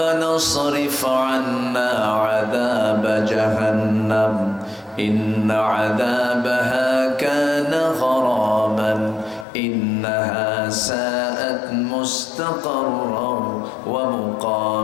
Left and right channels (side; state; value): right; drops out; at 9.5 s